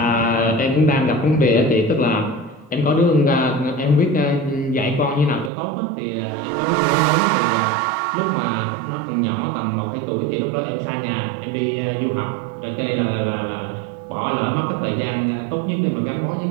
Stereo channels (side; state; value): left; drops out; at 5.5 s